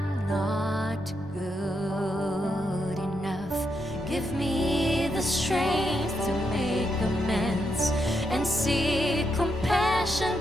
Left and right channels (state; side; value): normal; both; correlation 0.82